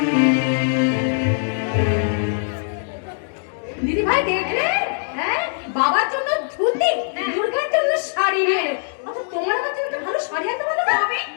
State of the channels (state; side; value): silent; right; digital silence